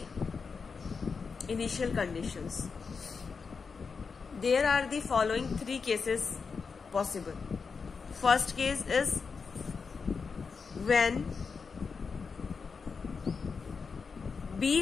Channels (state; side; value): quieter; right; 5.3 dB